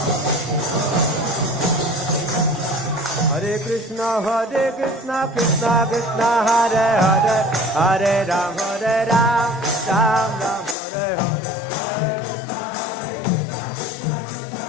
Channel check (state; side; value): drops out; right; at 10.8 s